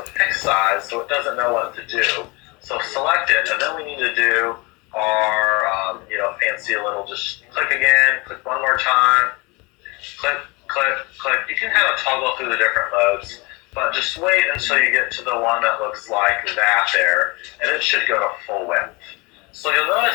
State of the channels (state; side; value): quieter; right; 26.7 dB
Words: fixed size, so it doesn't know what to do. So select it, and then we need to do our, fancy little, just click again, click one more time, click, click, click. You can kind of toggle through the different modes, but just wait until you get to the one that looks like that there, and it should go to full width. So you'll